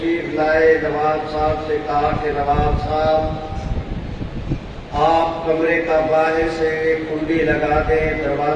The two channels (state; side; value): identical; both; correlation 1.00